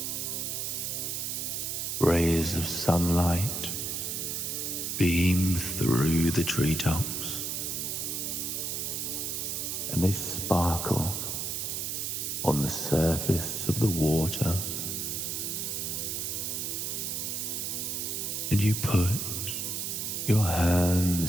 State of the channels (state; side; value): noise; right; hiss, 2 dB below the sound